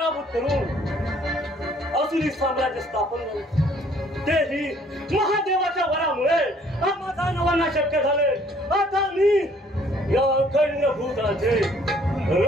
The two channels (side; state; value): both; normal; correlation 0.60